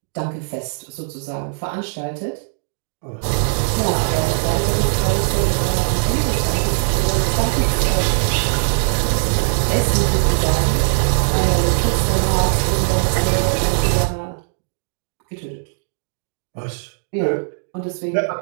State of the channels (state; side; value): silent; left; 66 dB below the other